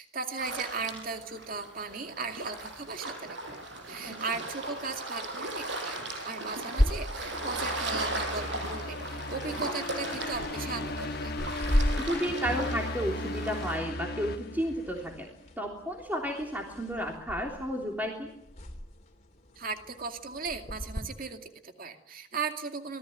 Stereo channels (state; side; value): normal; both; correlation 0.45